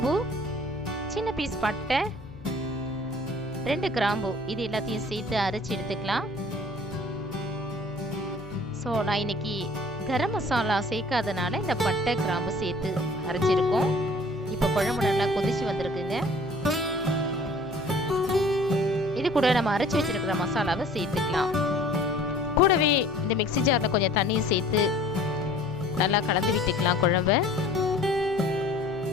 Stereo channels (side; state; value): left; noise; hum, 20 dB below the sound